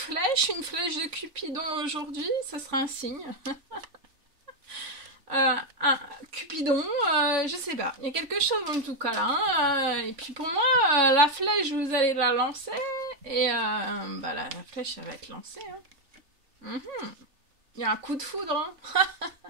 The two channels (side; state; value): left; late; 3.3 ms